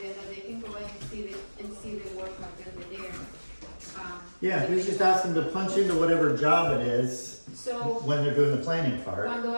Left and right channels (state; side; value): inverted; both; correlation -1.00